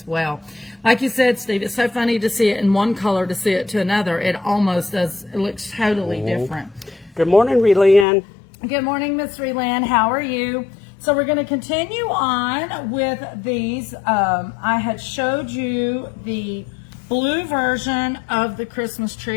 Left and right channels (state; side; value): drops out; right; at 8.1 s